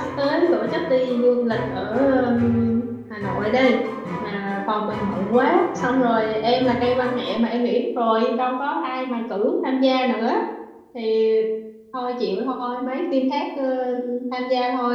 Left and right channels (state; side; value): identical; both; correlation 1.00